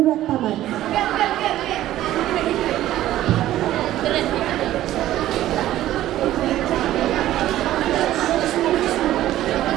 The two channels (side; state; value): left; quieter; 13.9 dB